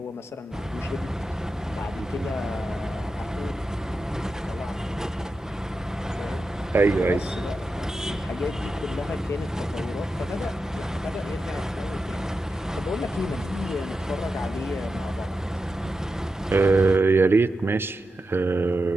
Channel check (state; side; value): normal; both; correlation 0.90